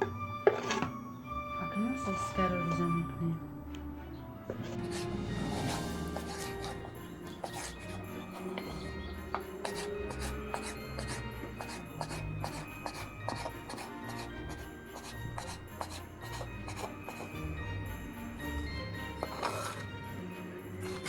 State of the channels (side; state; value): both; identical; correlation 1.00